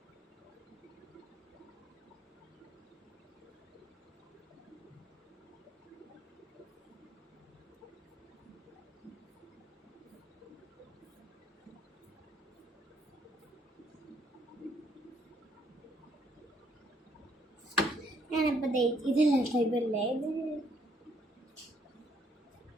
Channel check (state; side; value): normal; both; correlation 0.69